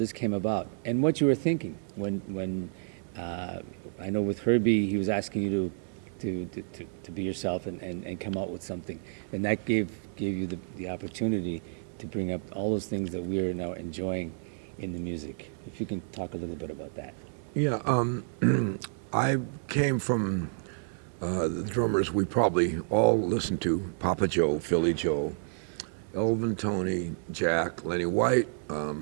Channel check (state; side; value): silent; left; 58 dB below the other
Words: came about, and what you were thinking when I know with Herbie, he was asking you to be yourself and come out with something, and that gave you the opportunity to bring up all those things that we're now enjoying in the music. If you can talk a little bit about that. Yeah, I came from the drummers we probably all listened to: Papa Joe, Philly Joe, Elvin, Tony, Jack, Lenny White,